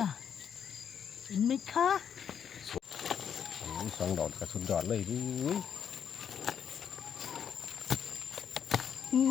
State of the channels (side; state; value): right; quieter; 8.1 dB